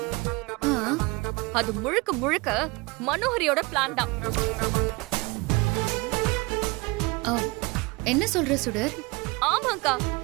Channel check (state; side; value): quieter; left; 25.5 dB